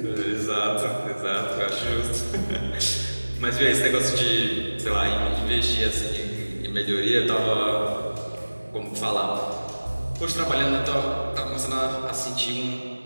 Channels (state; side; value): inverted; both; correlation -1.00